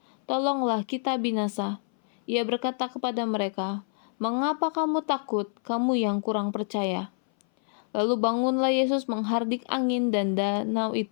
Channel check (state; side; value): silent; right; 58 dB below the other